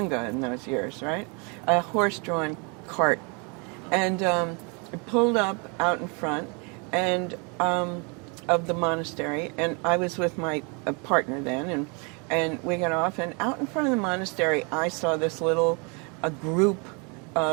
in those years, right? A horse-drawn cart, and it pulled up out in front, and of the monastery, and I was with my partner then, and we got off, and out in front of the monastery, I saw this a group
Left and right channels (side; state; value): left; quieter; 33.2 dB